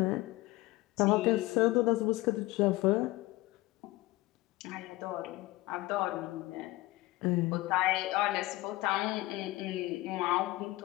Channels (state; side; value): quieter; right; 19.1 dB